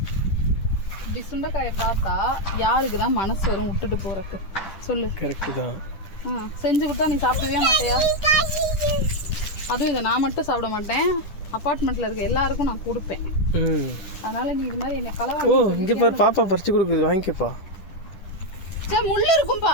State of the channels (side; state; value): right; late; 10 ms